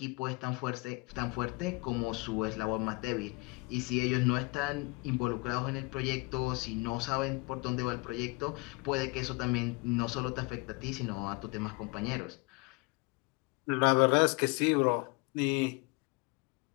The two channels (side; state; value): right; quieter; 27.3 dB